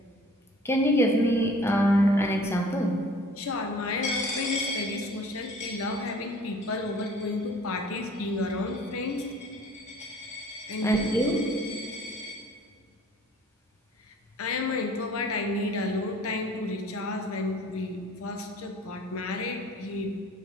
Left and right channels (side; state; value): both; normal; correlation 0.51